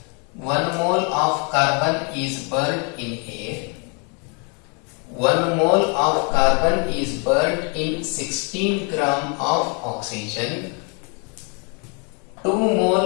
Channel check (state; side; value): quieter; right; 35.9 dB